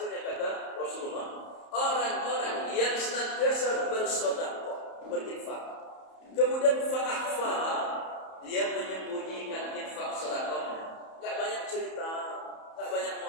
kata Rasulullah, orang-orang yang senantiasa bersedekah, berinfak. Kemudian fa akhfaha, dia menyembunyikan infak sedekahnya. Enggak banyak cerita, enggak banyak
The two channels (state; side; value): late; right; 31 ms